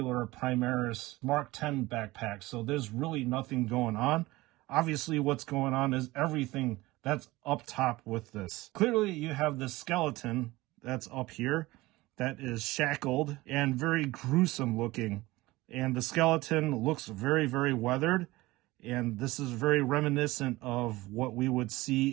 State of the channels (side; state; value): left; quieter; 19.7 dB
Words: Primaris Mark 10 backpack. So there's really nothing going on. Obviously what's going on is everything that's up top with this. Clearly you have this skeleton that's up here that is shackled and very gruesome looking. And the skeleton looks very, very weathered. And this is very reminiscent of what we would